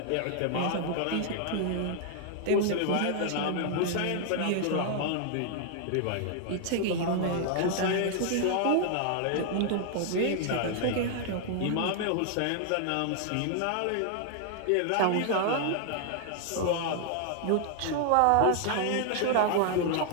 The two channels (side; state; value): both; different; correlation 0.00